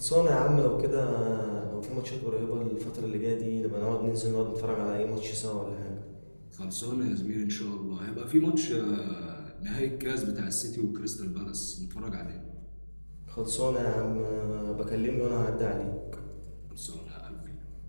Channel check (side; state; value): both; inverted; correlation -1.00